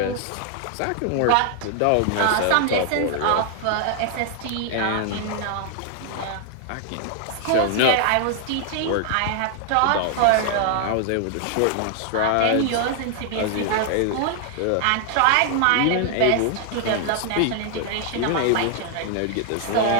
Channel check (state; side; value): different; both; correlation 0.00